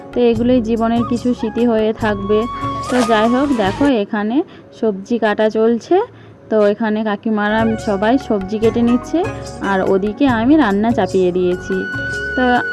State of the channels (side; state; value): both; identical; correlation 1.00